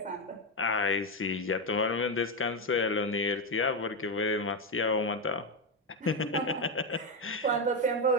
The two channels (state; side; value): normal; both; correlation 0.08